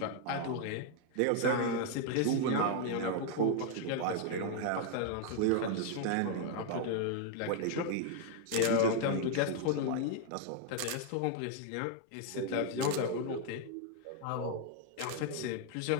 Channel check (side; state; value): both; different; correlation 0.00